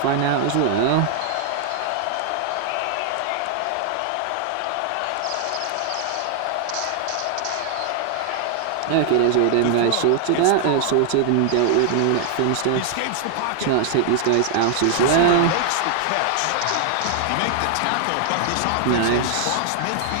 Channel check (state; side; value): different; both; correlation 0.00